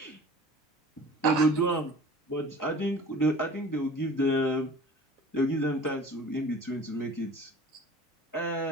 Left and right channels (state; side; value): normal; both; correlation 0.44